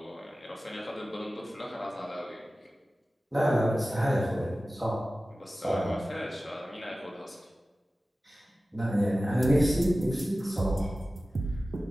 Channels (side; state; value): both; normal; correlation 0.96